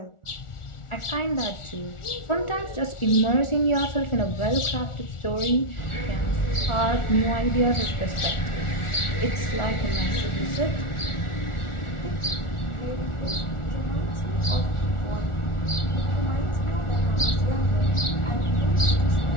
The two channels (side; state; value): right; late; 1.4 ms